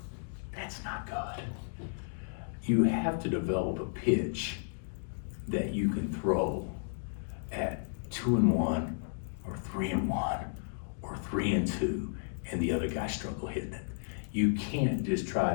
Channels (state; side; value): silent; right; digital silence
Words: that's not good. You have to develop a pitch that you can throw at 2-1 or 3-1 or 3-2, and the other guy struggle hitting it. You can't just try